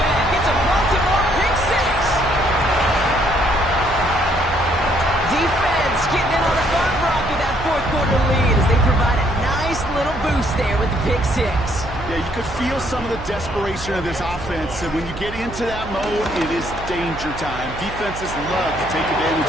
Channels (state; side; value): noise; right; hum, 11 dB below the sound